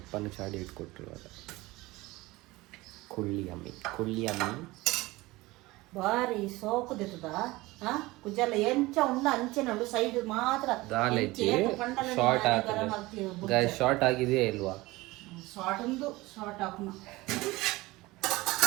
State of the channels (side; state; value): left; quieter; 20.4 dB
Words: ಚಾಡಿ ಇಟ್ಕೊಟ್ಟಿರುವಾಗ ಕುಳ್ಳಿ ಅಮ್ಮಿ ಬಾರಿ ಸೋಕುದಿತ್ತದ ಕುಜಲ್ಲ ಎಂಚ ಉಂಡ ಅಂಚೆ ನೋಡು ಸೈಡ್ ಮಾತ್ರ ದಾಲೈತಿ ಶಾರ್ಟ್ ಹಾಕಿದೆ. ಶಾರ್ಟ್ ಆಗಿದೆಯಾ ಇಲ್ವಾ? ಶಾರ್ಟ್ ಒಂದು ಶಾರ್ಟ್ ಹಾಕೋಣ.